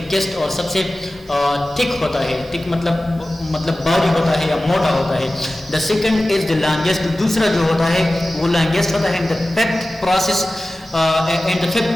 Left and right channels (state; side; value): normal; both; correlation 0.96